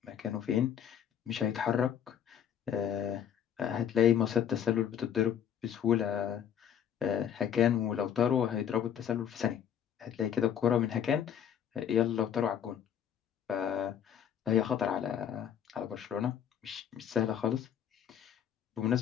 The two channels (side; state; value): right; quieter; 9.0 dB